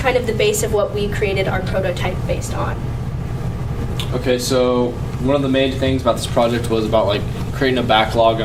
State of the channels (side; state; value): both; identical; correlation 1.00